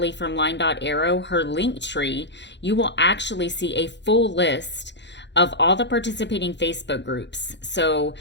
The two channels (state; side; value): late; right; 0.52 ms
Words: from Line.Arrow, her link tree, you will actually see a full list of all the participating Facebook groups. So